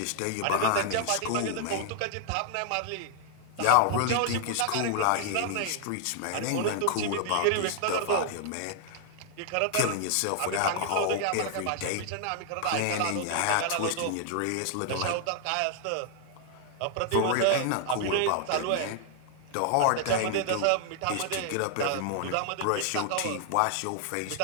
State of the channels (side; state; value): both; different; correlation 0.00